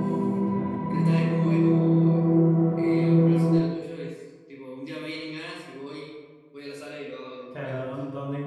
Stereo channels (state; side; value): identical; both; correlation 1.00